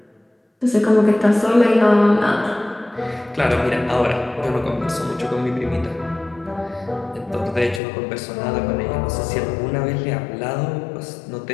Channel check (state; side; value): drops out; right; at 7.8 s